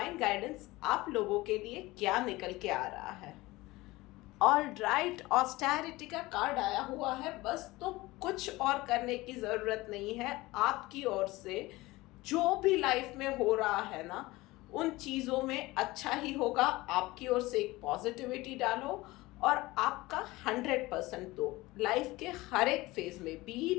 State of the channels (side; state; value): right; quieter; 20.1 dB